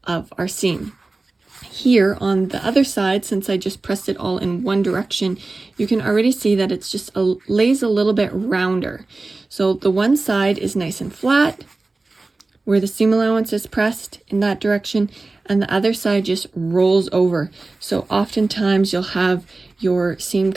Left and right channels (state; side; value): quieter; left; 3.4 dB